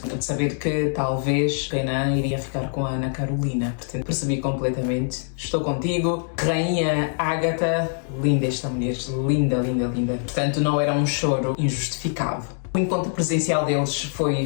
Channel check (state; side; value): silent; right; 63 dB below the other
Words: de saber que talvez o Renan iria ficar com a Ana Carolina. Portanto, percebi completamente. Estou contigo, Rainha Agatha. Linda esta mulher, linda, linda, linda. Portanto, não era um choro injustificado. O encontro presencial deles